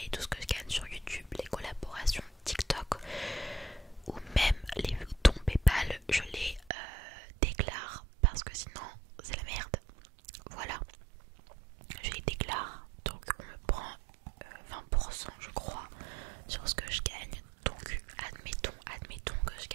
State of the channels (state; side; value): drops out; left; at 6.7 s